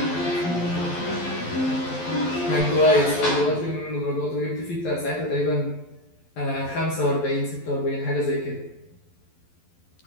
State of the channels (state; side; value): late; right; 12 ms